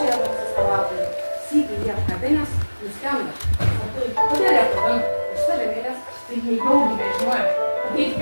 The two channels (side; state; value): both; inverted; correlation -1.00